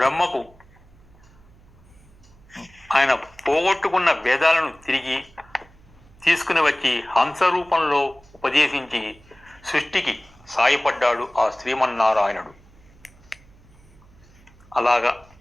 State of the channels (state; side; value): noise; right; hum, 26 dB below the sound